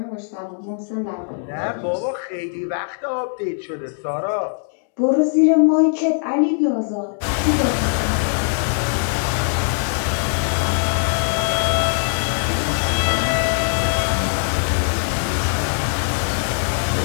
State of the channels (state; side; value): silent; right; digital silence